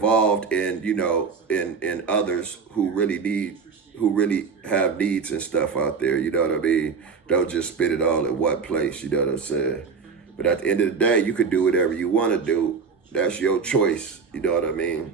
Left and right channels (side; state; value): left; quieter; 5.4 dB